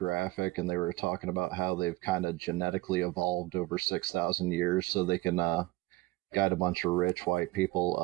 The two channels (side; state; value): left; quieter; 19.7 dB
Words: and they were talking about how they've kind of genetically evolved over 6,000 years so they can guide a bunch of rich white people